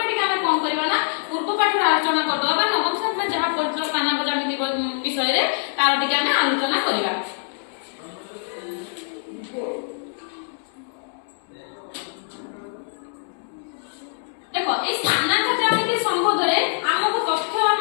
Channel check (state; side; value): silent; right; 63 dB below the other